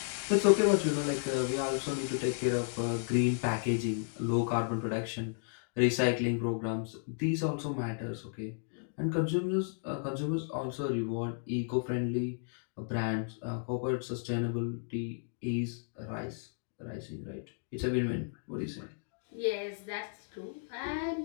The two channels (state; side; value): silent; right; digital silence